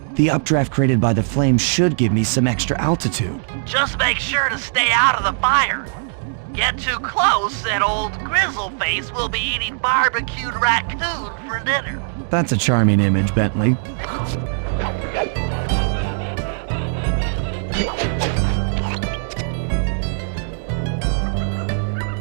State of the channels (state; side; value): silent; left; digital silence